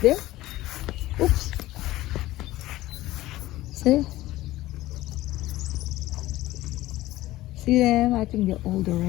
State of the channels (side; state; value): right; quieter; 16.7 dB